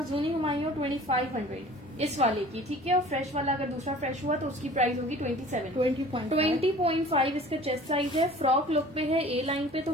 जूनी हुमायूं 2500 इस वाले की, ठीक है। और फ्रेश वाला अगर दूसरा फ्रेश हुआ तो उसकी प्राइस होगी 27। 20.5 इसका चेस्ट साइज है, फ्रॉक लुक पे है, ए लाइन पे, तो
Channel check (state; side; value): normal; both; correlation 0.46